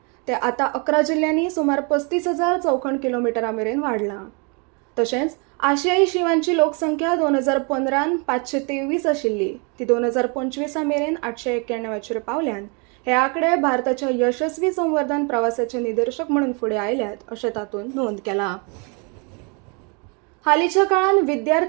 ते आतां 11 जिल्ल्यांनी सुमार 35,000 चौखण किलोमिटरा मेरेन वाडलां. तशेंच आशियाई शिंवांची लोकसंख्या 2015 523 आशिल्ली ती 2025 मेरेन 891 पावल्यान हे आंकडे भारताच्या यशस्वी संवर्धन प्रवासाचे निदर्शक म्हणून फुडें आयल्यात अशें तातूंत नोंद केला. हालींच्या काळात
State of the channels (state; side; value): quieter; left; 34.0 dB